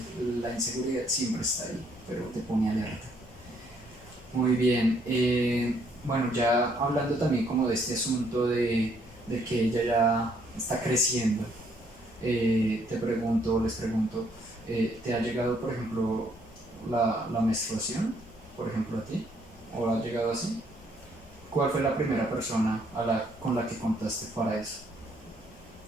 la inseguridad siempre está ahí, pero te pone alerta. Muy bien, bueno, ya hablando también como de este asunto de que ella ya está creciendo, les pregunto, ¿te ha llegado, por ejemplo, la menstruación, por ejemplo, a ti? ¿O ha llegado así? ¿Cuál fue la primera persona con la que contaste para eso?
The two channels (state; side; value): normal; both; correlation 0.68